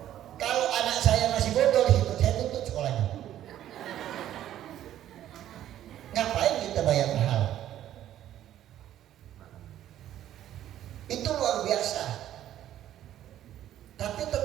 Kalau anak saya masih bodoh di situ, saya tuntut sekolahnya. Ngapain kita bayar mahal? Itu luar biasa. Tapi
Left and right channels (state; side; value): quieter; left; 12.0 dB